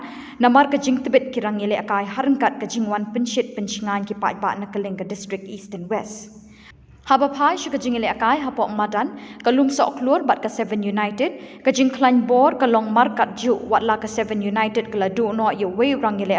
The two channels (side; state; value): both; identical; correlation 1.00